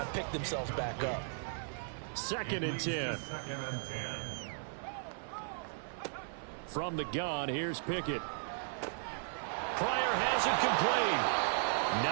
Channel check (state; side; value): silent; left; 54 dB below the other